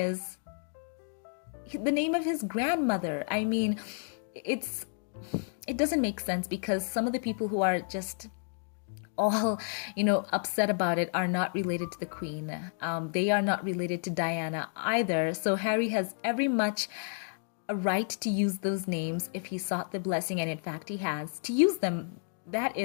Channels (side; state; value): right; silent; 57 dB below the other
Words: the name of his grandmother. I mean, it doesn't make sense, because some of the people who are just all, upset about it are not related to the Queen. They are not related to Diana either. So Harry has every much a right to use those names if he sought the blessing, and in fact he has, to use them. That